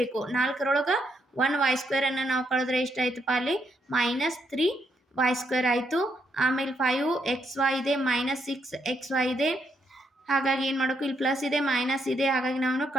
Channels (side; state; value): both; normal; correlation 0.77